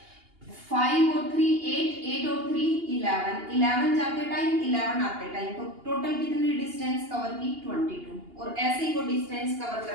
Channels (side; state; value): left; late; 2.8 ms